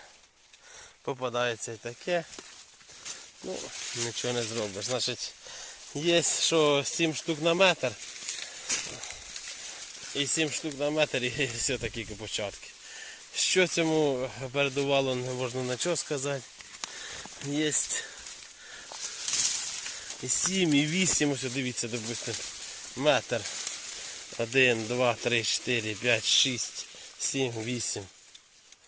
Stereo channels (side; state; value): both; identical; correlation 1.00